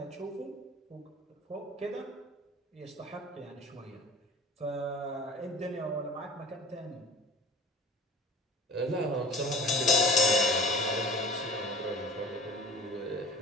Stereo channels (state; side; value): normal; both; correlation 0.43